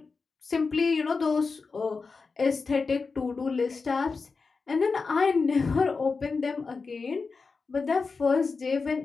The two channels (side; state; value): right; quieter; 4.6 dB